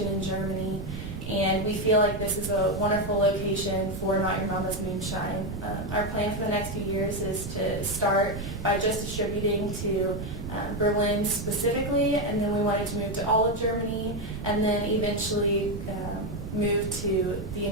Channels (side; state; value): right; noise; rumble, 8 dB below the sound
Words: in Germany. And we feel like this is a wonderful location for Not Your Mama's Moonshine. Our plan for the next few years is to start by just distributing to Berlin specifically, and then we wanted to move to all of Germany, and then eventually move to the